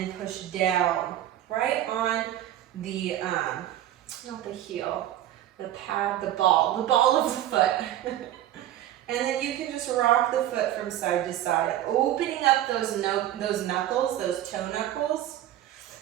push down right on the, not the heel, the pad, the ball of the foot. And then you can just rock the foot from side to side, opening up those knuckles, those toe knuckles.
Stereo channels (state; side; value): quieter; left; 12.7 dB